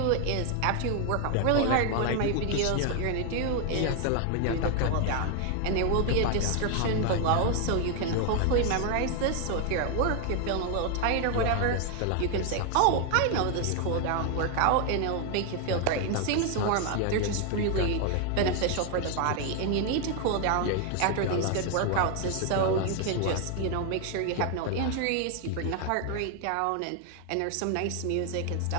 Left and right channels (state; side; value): different; both; correlation 0.01